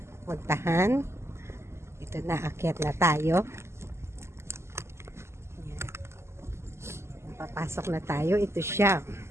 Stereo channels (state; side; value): late; left; 0.13 ms